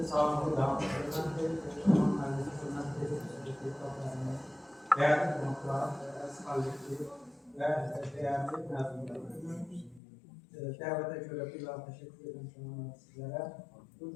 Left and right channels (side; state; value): right; drops out; at 10.0 s